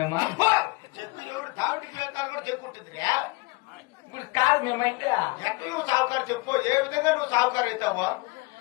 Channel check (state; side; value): quieter; right; 24.3 dB